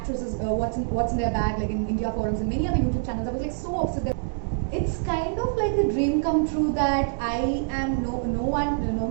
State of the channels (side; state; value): left; silent; digital silence